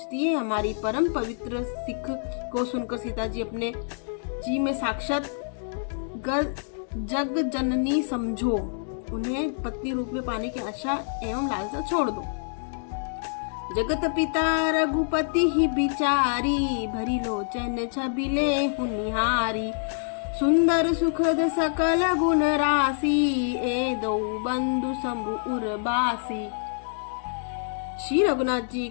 है। हमारी परम पवित्र सिख को सुनकर सीता जी अपने जी में साक्षात जग जननी समझो, उन्हें पत्नी रूप में पाने की आशा एवं लालसा छोड़ दो। जगत पिता रघुपति ही बिचारी, भरी लोचन छबिले हुनिहारी। सुंदर सुखद सकल गुण राशि, ए दो बंधु शंभु उर्वासी। श्री रघुनाथ जी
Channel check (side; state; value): right; silent; digital silence